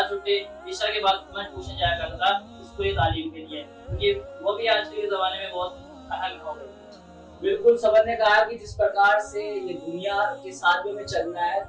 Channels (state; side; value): identical; both; correlation 1.00